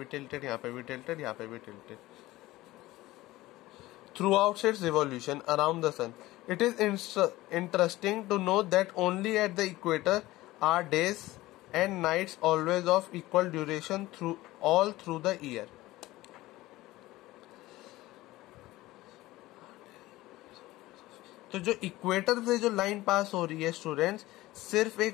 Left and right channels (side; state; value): right; quieter; 17.8 dB